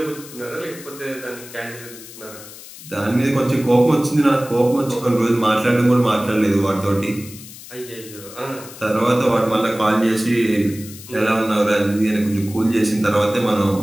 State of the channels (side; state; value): left; noise; hiss, 16 dB below the sound